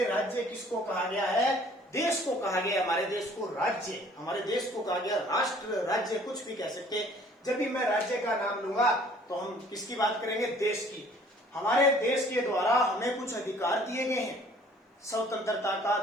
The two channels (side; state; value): both; normal; correlation 0.55